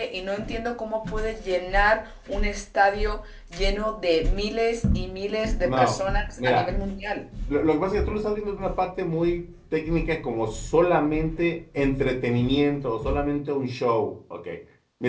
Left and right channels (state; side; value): identical; both; correlation 1.00